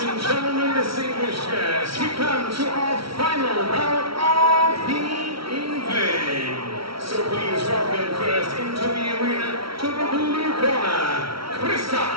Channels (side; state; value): left; late; 0.75 ms